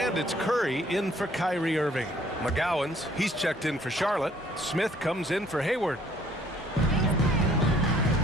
it's Curry in for Kyrie Irving. McGowan's, he's checked in for Charlotte. Smith comes in for Hayward.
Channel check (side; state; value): both; normal; correlation 0.61